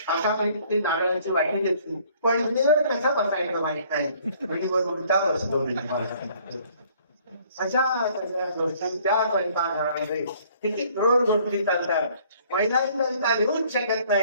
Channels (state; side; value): inverted; both; correlation -0.59